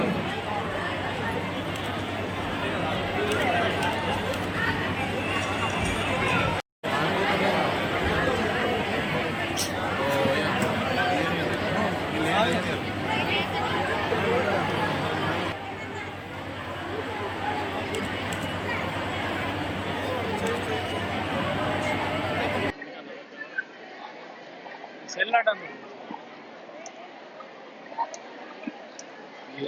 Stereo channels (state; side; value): identical; both; correlation 1.00